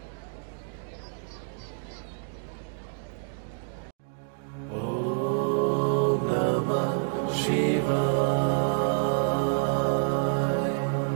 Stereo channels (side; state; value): left; silent; digital silence